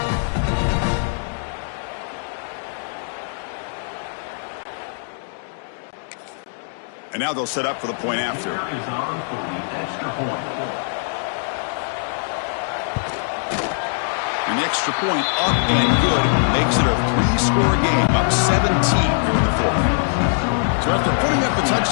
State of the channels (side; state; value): right; silent; digital silence